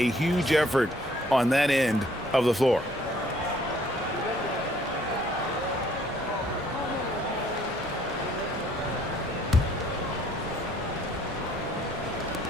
huge effort on that end of the floor.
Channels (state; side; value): normal; both; correlation 0.62